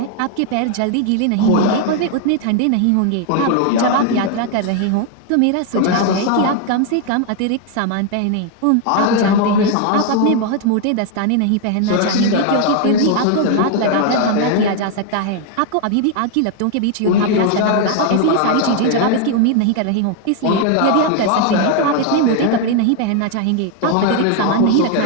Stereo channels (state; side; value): different; both; correlation 0.00